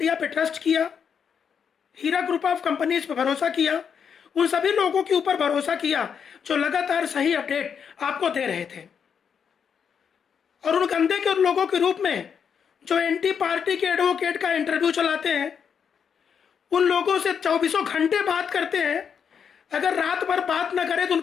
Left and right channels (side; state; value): right; quieter; 7.1 dB